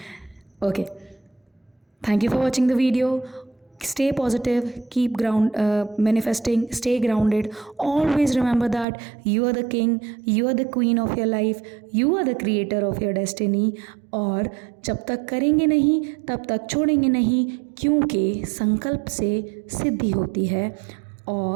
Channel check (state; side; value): drops out; left; at 8.8 s